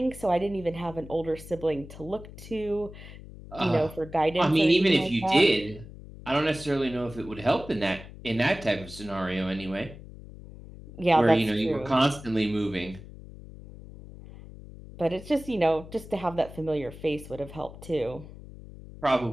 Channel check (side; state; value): left; noise; hum, 16 dB below the sound